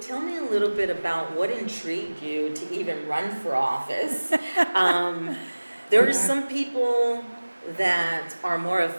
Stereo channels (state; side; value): inverted; both; correlation -1.00